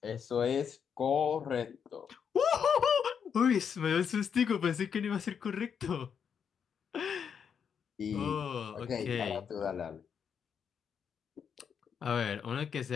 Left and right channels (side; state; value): right; quieter; 7.2 dB